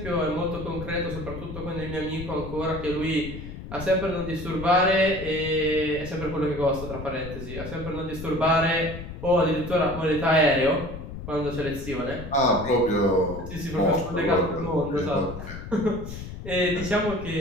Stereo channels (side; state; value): left; noise; rumble, 10 dB below the sound